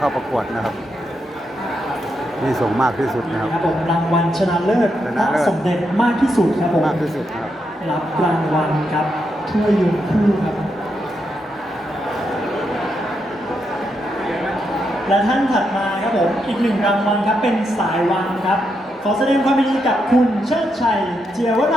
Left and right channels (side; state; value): both; normal; correlation 0.82